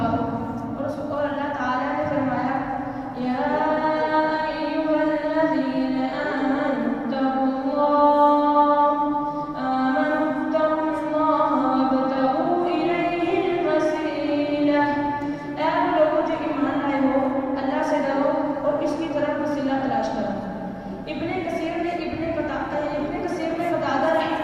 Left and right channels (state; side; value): identical; both; correlation 1.00